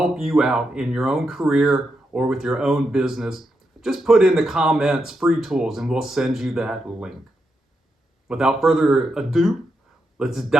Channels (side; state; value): both; normal; correlation 0.84